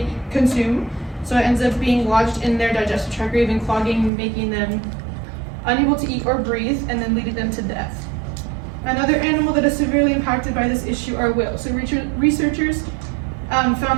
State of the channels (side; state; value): left; drops out; at 4.1 s